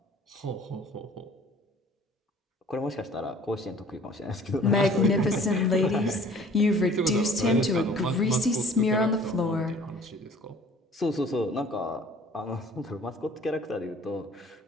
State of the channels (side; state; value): both; normal; correlation 0.51